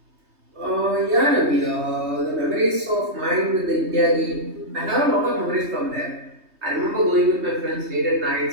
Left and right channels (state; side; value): late; left; 3.2 ms